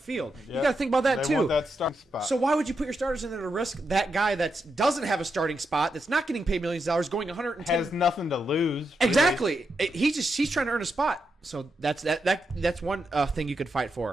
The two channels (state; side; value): normal; both; correlation 0.84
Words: Yep. You got to think about that they too. Want that starting spot. So why would you put your starters in there to risk that guy that doesn't have a starting spot, that's not getting paid millions of dollars, going 110? Has nothing to lose. Really. Exactly. He's trying to earn a spot. So that's one thing you could fight